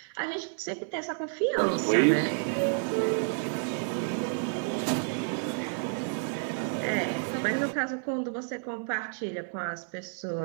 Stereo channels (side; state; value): left; silent; 58 dB below the other